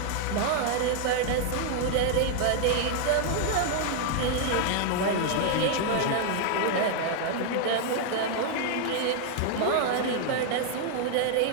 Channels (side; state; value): both; different; correlation 0.00